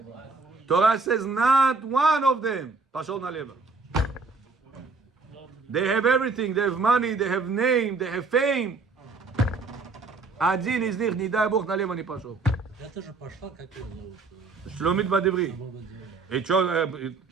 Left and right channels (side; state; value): left; quieter; 4.1 dB